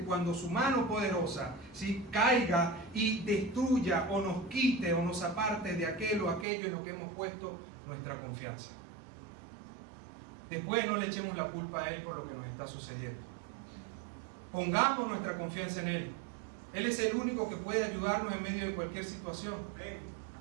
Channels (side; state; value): left; drops out; at 6.5 s